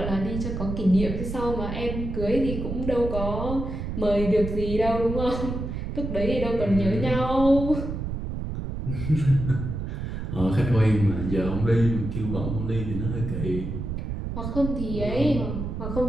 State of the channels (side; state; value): right; noise; rumble, 5 dB below the sound